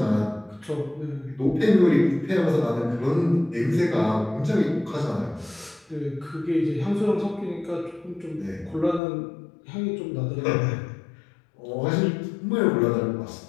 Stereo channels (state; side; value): drops out; right; at 9.0 s